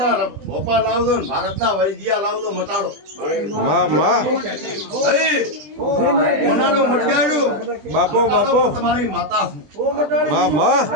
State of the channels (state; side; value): late; left; 20 ms